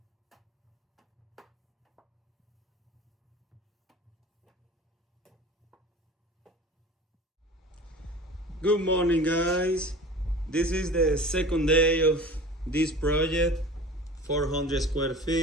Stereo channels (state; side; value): normal; both; correlation 0.39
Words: Good morning, guys. This is the second day of this project, 400 square